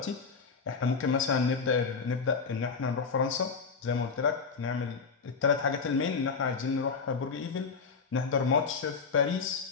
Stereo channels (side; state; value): right; quieter; 5.2 dB